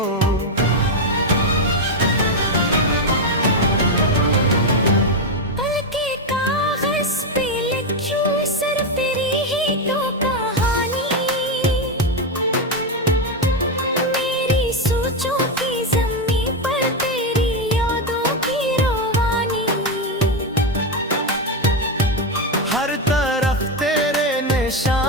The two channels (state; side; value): normal; both; correlation 0.07